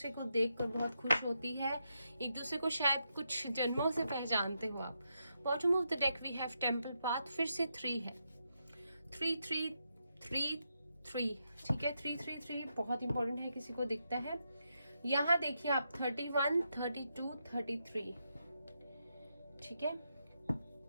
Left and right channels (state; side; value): inverted; both; correlation -0.83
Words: को देखकर बहुत खुश होती है, एक दूसरे को शायद कुछ जन्मों से पहचानते हो आप। Bottom of the deck we have temple path, फिर से 3 है, 3 ठीक है। 3 बहुत इंपॉर्टेंट है, किसी को दिखता है। यहाँ देखिए आप 31, 32, 33, ठीक है,